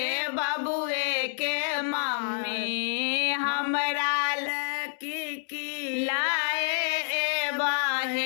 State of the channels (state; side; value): silent; right; 59 dB below the other